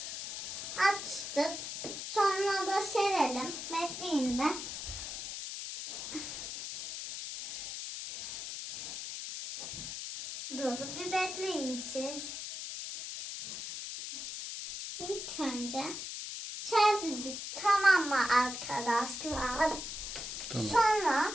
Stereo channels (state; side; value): noise; left; hiss, 6 dB below the sound